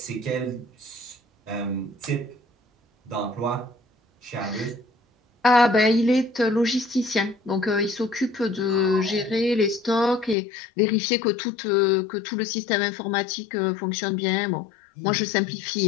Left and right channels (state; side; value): drops out; right; at 10.4 s